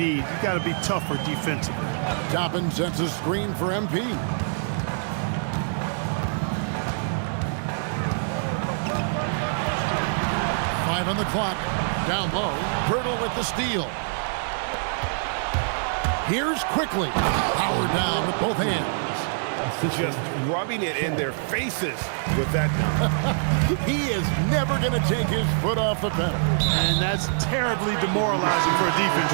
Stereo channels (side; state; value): left; silent; digital silence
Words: You got to be tougher defensively. Toppin sets a screen for MP. Five on the clock. Down low. Pirtle with the steal. Here's quickly. Power down with both hands. Just rubbing it in their faces with that dunk. He is never going to take his foot off the pedal. And that's terribly demoralizing for a defense,